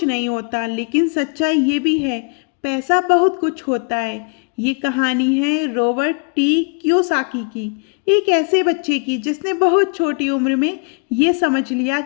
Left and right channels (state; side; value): quieter; right; 37.3 dB